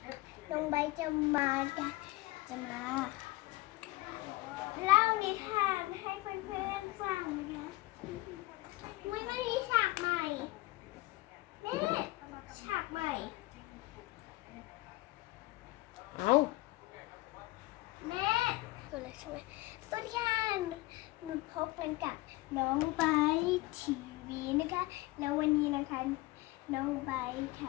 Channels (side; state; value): right; quieter; 20.1 dB